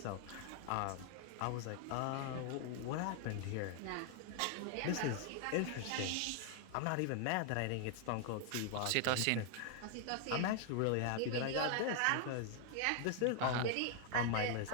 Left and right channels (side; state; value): both; different; correlation 0.00